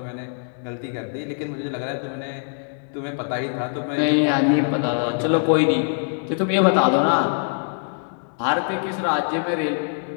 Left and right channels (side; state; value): right; silent; 63 dB below the other